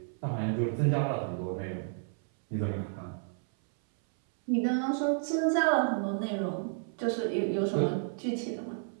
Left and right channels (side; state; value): left; silent; 57 dB below the other